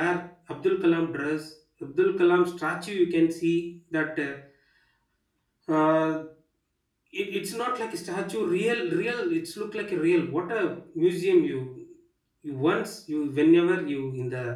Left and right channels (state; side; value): identical; both; correlation 1.00